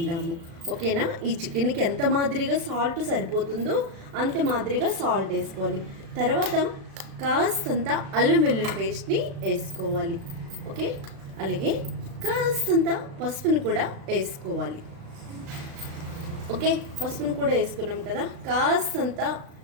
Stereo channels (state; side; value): late; left; 36 ms